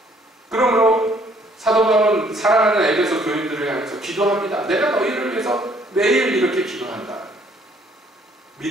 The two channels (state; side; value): normal; both; correlation 0.63